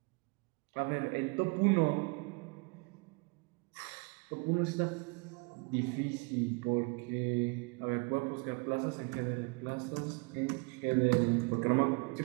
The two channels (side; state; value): left; quieter; 31.4 dB